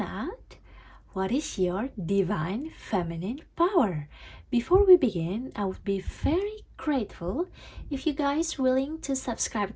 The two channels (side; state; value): both; identical; correlation 1.00